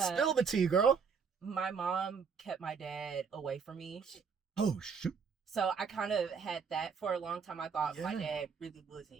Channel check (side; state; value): left; quieter; 6.0 dB